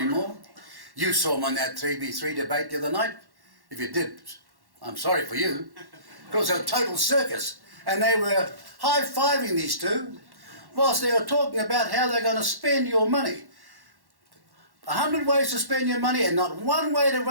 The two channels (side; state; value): left; late; 1.1 ms